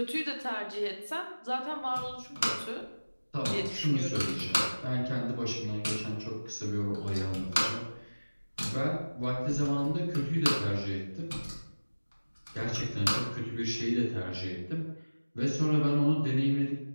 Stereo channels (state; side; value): inverted; both; correlation -1.00